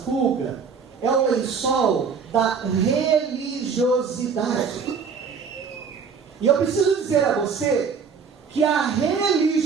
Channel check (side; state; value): left; quieter; 5.8 dB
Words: é o lençol da religiosidade. E eu preciso dizer a você que a